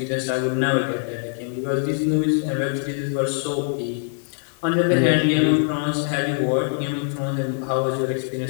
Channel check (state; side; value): silent; right; 59 dB below the other